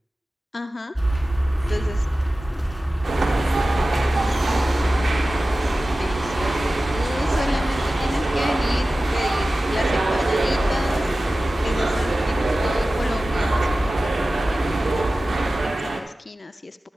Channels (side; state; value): both; normal; correlation 0.96